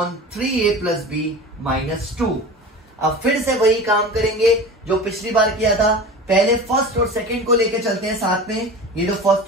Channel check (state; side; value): normal; both; correlation 0.33